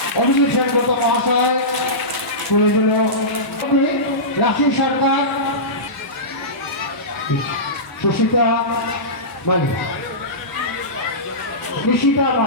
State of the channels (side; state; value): right; late; 1.7 ms